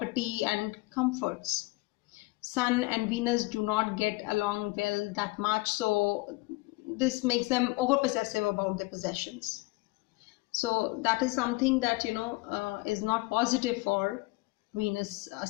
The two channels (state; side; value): quieter; right; 23.3 dB